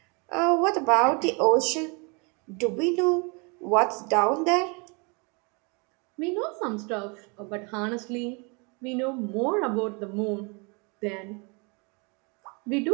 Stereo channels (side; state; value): left; quieter; 31.8 dB